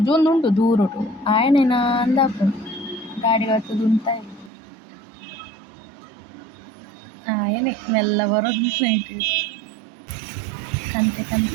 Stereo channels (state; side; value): drops out; left; at 4.5 s